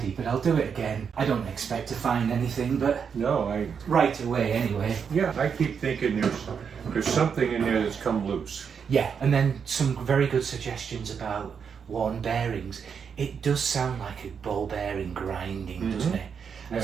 but I'll do it again. I don't expect to find anything, but right away anyway. Yeah, I keep thinking there's something in there that's come loose. Yeah, and then some very good suggestions about worn bearings. It does sound like a ball bearing grinding, doesn't it? And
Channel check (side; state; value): left; quieter; 6.7 dB